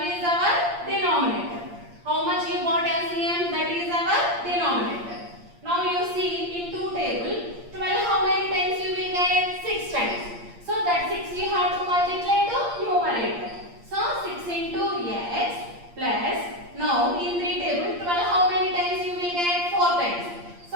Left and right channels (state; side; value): late; left; 8.6 ms